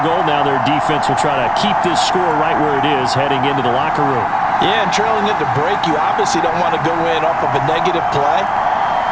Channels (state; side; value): identical; both; correlation 1.00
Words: goal. Now their defense will try to keep this score right where it is heading into the locker room. Yeah, and trailing at the break, you obviously don't want to go in off of a negative play.